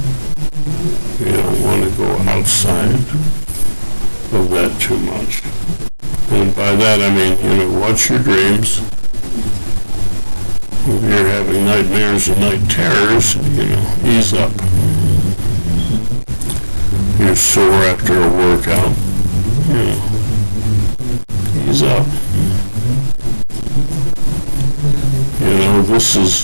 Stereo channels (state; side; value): inverted; both; correlation -1.00